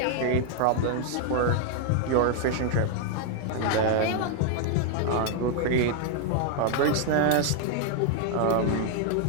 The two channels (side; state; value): both; different; correlation 0.00